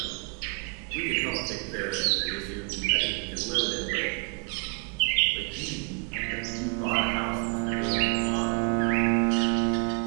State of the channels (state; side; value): quieter; left; 35.2 dB